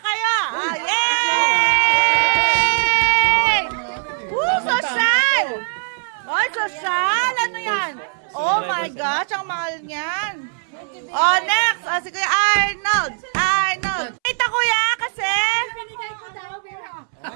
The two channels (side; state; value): left; silent; 65 dB below the other